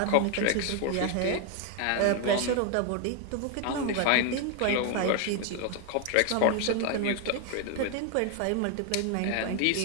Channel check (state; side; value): different; both; correlation 0.01